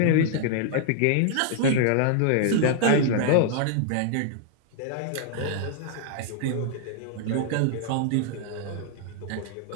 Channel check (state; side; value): different; both; correlation -0.01